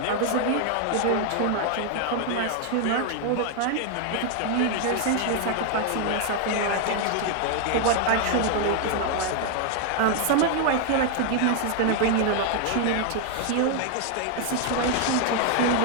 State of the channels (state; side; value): different; both; correlation 0.00